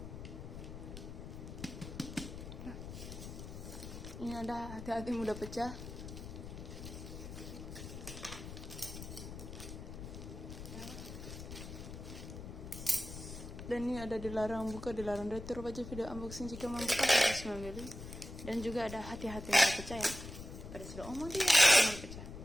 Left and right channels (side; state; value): left; noise; rumble, 10 dB below the sound